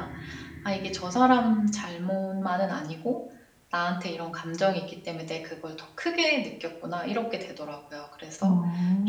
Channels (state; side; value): identical; both; correlation 1.00